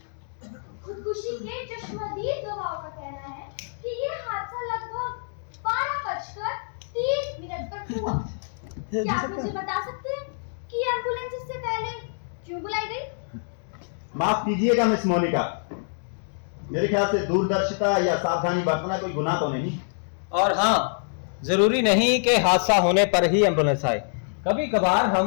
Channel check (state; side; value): silent; right; digital silence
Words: खुदकुशी के चश्मदीद गवाहों का कहना है कि ये हादसा लगभग 12:30 पर हुआ। क्या आप मुझे बता सकते हैं कि एम्बुलेंस इससे पहले क्यों बुलाई गई? माफ कीजिएगा मिस मोनिका, मेरे ख्याल से दूरदर्शिता या सावधानी बरतना कोई गुनाह तो नहीं। और हाँ, जरूरी नहीं कि हादसा होने पर ही एम्बुलेंस आए, कभी कभार